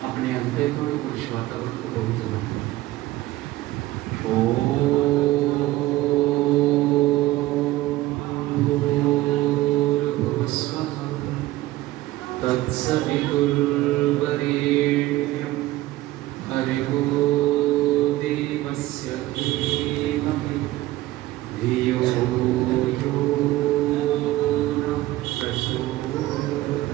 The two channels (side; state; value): left; quieter; 16.8 dB